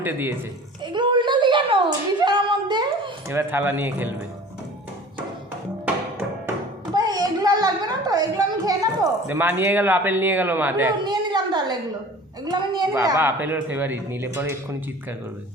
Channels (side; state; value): both; normal; correlation 0.43